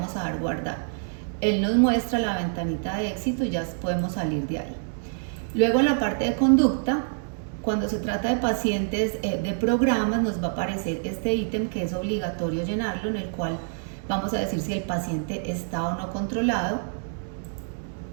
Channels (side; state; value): left; silent; digital silence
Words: a dar guardar. Él nos muestra la ventanita de éxito y ya podemos salir de ahí. Luego en la parte de conducta, cuando se trata de pacientes de programas, nos va a aparecer este ítem que es obligatorio llenarlo, en el cual vamos a decir si el paciente está o no controlado.